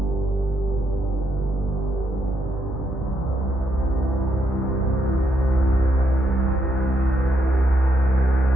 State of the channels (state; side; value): normal; both; correlation 0.77